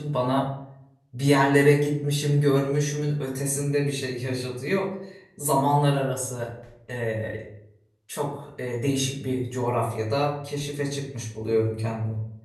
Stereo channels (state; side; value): identical; both; correlation 1.00